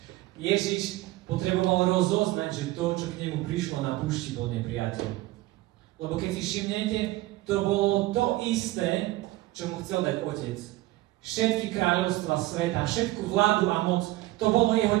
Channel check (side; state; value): left; quieter; 17.6 dB